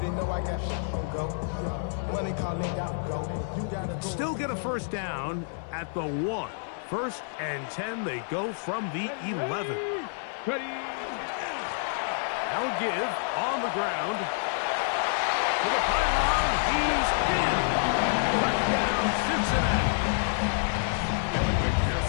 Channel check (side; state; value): right; silent; 59 dB below the other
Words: know I got shit on go. Money calling, gotta go. You gotta go. Still get a 1st down at the 1. 1st and 10, they go from the 11. Ready. Now give on the ground. To the pylon, he's in. Touchdown, Cincinnati. Kevin